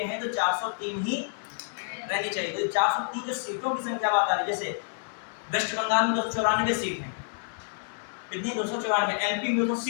हैं तो 403 ही रहनी चाहिए। तो 403 जो सीटों की संख्या बात आ रही है, जैसे वेस्ट बंगाल में 294 सीट है, कितनी 294, एमपी में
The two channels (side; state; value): right; silent; digital silence